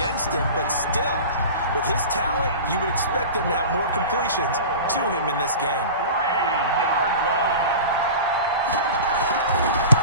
him, but still, with his talent, you would expect him to have more completions to him in this game. 3-yard line.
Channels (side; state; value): both; inverted; correlation -0.34